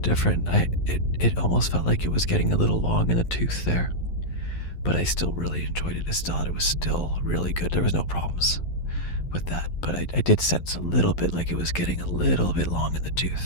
different. It almost felt like it was getting a little long in the tooth there, but I still really enjoyed it. I still thought it was still really good. There was no problems with that, but I did sense a little bit like it was getting a little bit long in the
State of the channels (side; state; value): right; late; 11 ms